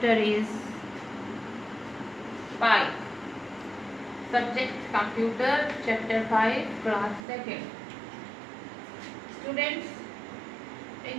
is 5. Subject computer, chapter 5, class 2nd. Students,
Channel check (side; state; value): left; drops out; at 7.2 s